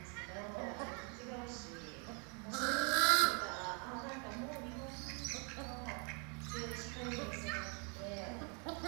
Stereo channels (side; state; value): left; quieter; 37.0 dB